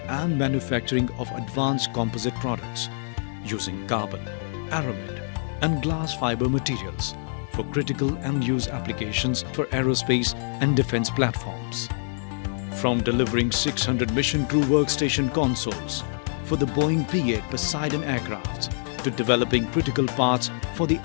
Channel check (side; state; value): right; silent; digital silence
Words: and manufacturing of advanced composite products using carbon, aramid and glass fiber materials for critical and use applications for aerospace and defense platforms. From delivering 600 mission crew workstation consoles for the Boeing P-8 Poseidon aircraft to developing critical parts for the